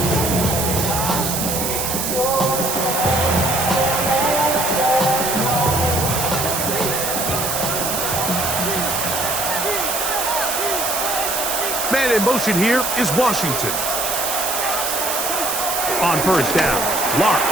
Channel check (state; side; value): noise; right; hiss, 1 dB below the sound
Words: Man in motion here is Washington. On first down,